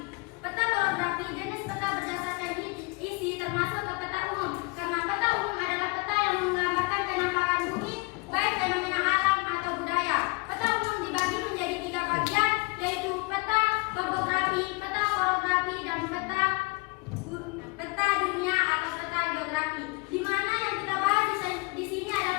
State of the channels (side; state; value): right; quieter; 28.1 dB